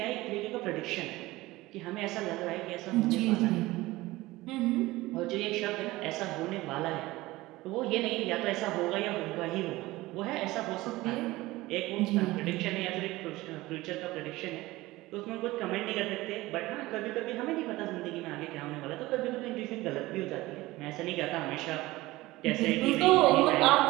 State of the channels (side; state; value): left; quieter; 19.0 dB